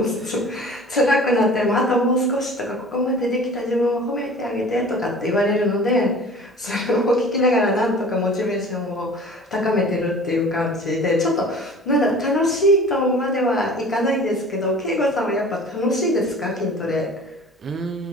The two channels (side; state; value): both; normal; correlation 0.44